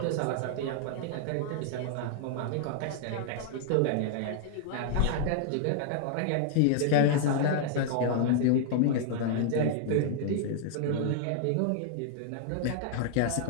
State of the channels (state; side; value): different; both; correlation -0.01